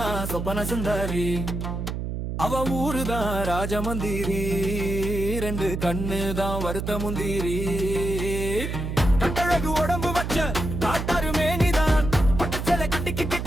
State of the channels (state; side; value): noise; right; hum, 4 dB below the sound